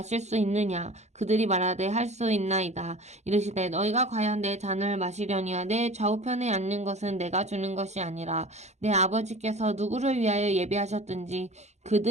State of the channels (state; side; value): late; left; 0.33 ms